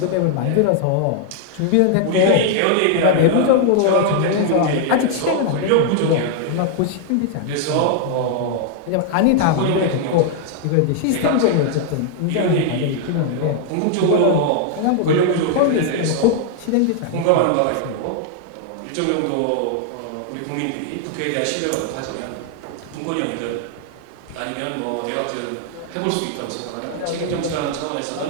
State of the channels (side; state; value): both; different; correlation 0.00